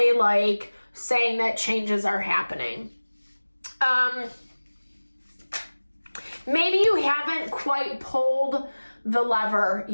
like saying that changes are happening. Maybe you haven't quite pulled the lever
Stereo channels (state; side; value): inverted; both; correlation -1.00